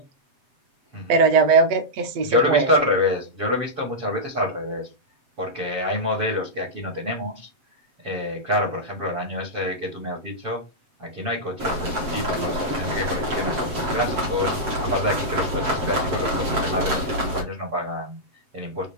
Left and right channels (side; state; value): left; late; 7.7 ms